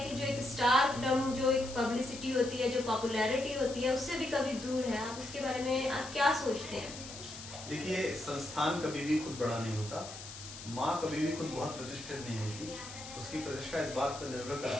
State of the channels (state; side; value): noise; left; hiss, 12 dB below the sound